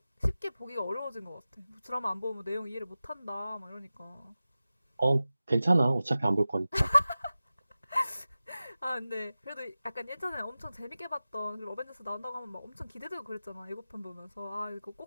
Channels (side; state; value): both; inverted; correlation -0.95